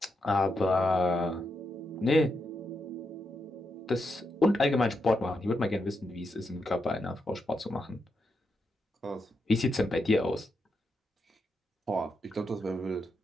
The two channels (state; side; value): normal; both; correlation 0.83